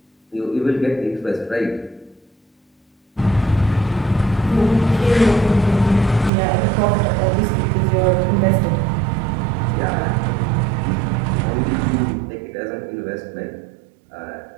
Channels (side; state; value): left; drops out; at 6.3 s